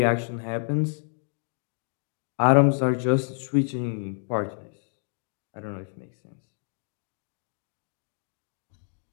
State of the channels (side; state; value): right; silent; digital silence